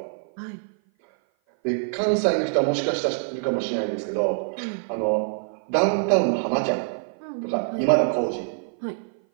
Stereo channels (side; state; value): left; silent; 56 dB below the other